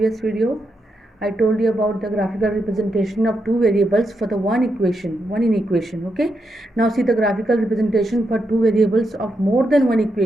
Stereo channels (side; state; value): both; normal; correlation 0.83